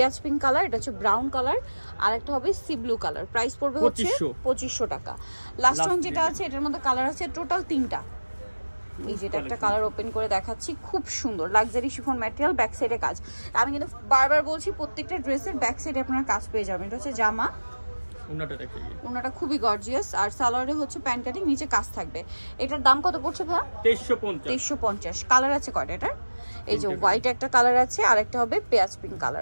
পিঙ্ক কালার, এটা হচ্ছে ব্রাউন কালার, আর একটা হবে সি ব্লু কালার। প্রাইস পড়বে হচ্ছে 2500 টাকা। লাস্ট ওয়ান যেটা আছে, এটার মধ্যে কালার আছে টোটাল 3টা। এই যেটা একটা কালার ওপেন করে দেখাচ্ছি, খুব সুন্দর লাক্সারি শিফন ম্যাটেরিয়াল, ব্যাক সাইডে কাজ। আমি কিন্তু বারবার বলছি প্রত্যেকটা ড্রেসের ব্যাক সাইডে আপনারা কাজ পেয়ে যাবেন। এটা হচ্ছে জামা, ওনাটা খুবই গর্জিয়াস, আর সালোয়ারে হচ্ছে প্যান্ট কাটিং, নিচে কাজ থাকবে। এটার দাম কত পড়ছে ভাই? 2350। কালার আছে কয়টা এটার? এই যে হোয়াইট একটা কালার আছে, আর একটা হবে পেঁয়াজ পিঙ্ক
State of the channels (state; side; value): inverted; both; correlation -1.00